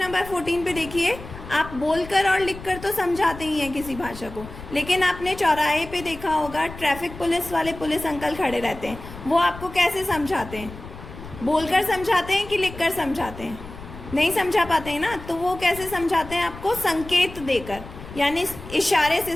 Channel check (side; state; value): left; noise; rumble, 14 dB below the sound